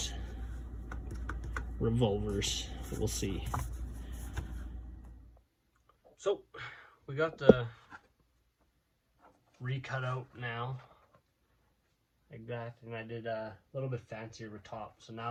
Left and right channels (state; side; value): identical; both; correlation 1.00